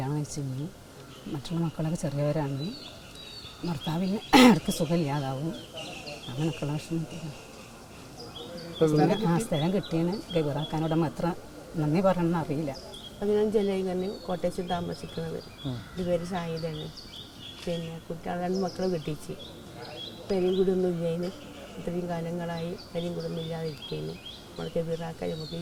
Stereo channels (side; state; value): both; identical; correlation 1.00